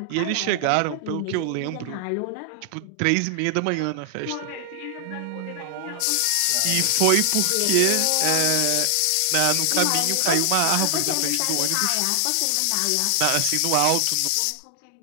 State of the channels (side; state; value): both; different; correlation 0.00